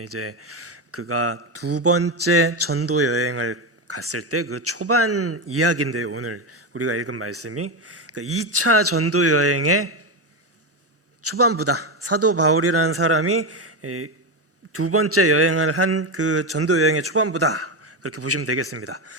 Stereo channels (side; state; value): both; normal; correlation 0.13